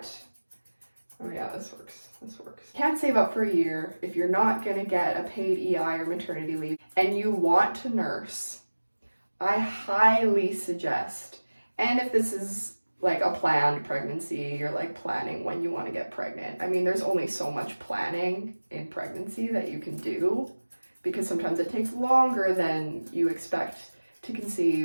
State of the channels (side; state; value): both; inverted; correlation -1.00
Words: oh yeah, this works. Can't save up for a year if you're not going to get a paid EI or maternity leave and you want to nurse, I highly suggest, and if this is like a planned pregnancy, you're like planning when you want to get pregnant. I mean, there's only so much planning in pregnancy that you can do because sometimes it takes longer than you expect to